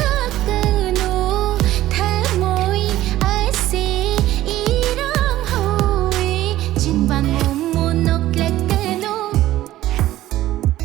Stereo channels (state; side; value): quieter; left; 14.8 dB